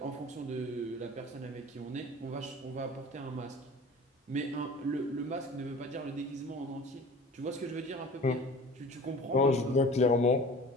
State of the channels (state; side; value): normal; both; correlation 0.42